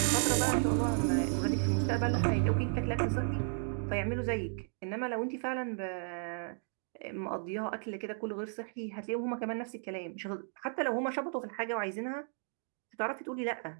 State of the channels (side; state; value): left; silent; 55 dB below the other